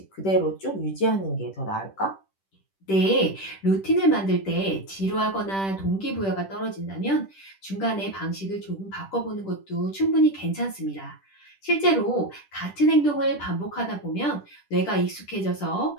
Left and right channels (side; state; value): right; late; 10 ms